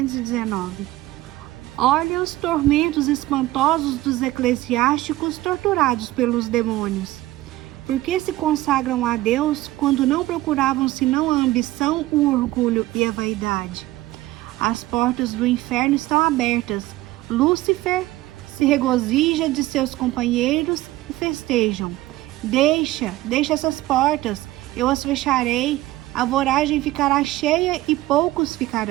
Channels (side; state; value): left; quieter; 17.1 dB